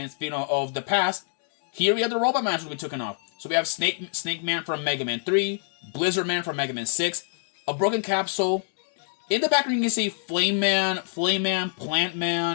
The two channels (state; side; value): silent; right; 61 dB below the other